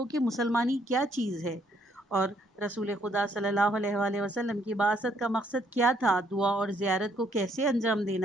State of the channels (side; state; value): both; normal; correlation 0.69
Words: کہ مسلمانی کیا چیز ہے اور رسول خدا صلی اللہ علیہ وآلہ وسلم کی بعثت کا مقصد کیا تھا، دعا اور زیارت کو کیسے انجام